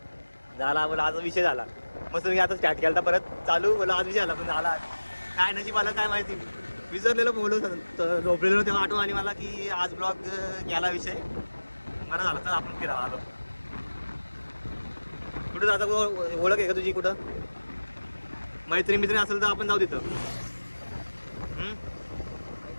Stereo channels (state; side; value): inverted; both; correlation -1.00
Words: झाला. बोला आज विषय झाला. मस्त मी आता स्टार्ट केला परत चालू. बोला आज विषय झाला पण झाला. काय नशीब आलं काय माहिती. विसरलेलो बोललो झोपलेलो तेव्हा आठवण आली मला की आज ब्लॉग घ्यायला विषय. बरं झालं तर आपण फिरायला आलो. कुठं जाता ओळख आहे का तुझी? कुठं मैत्रिणी असेल तर आपण जाऊ तिथं.